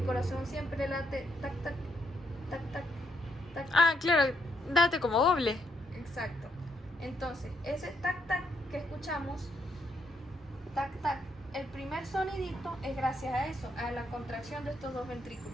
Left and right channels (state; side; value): normal; both; correlation 0.77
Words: corazón siempre late tac, tac, tac, tac, tac. Ah, claro, date como doble. Exacto. Entonces, ese tac, tac que escuchamos, tac, tac, el primer sonidito es gracias a eso, a la contracción de estos dos